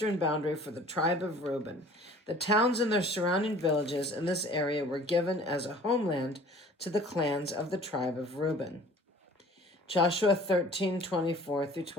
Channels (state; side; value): normal; both; correlation 0.49